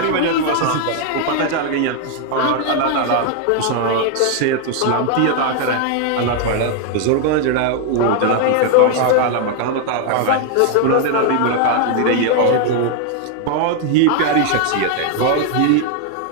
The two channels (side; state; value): both; different; correlation 0.00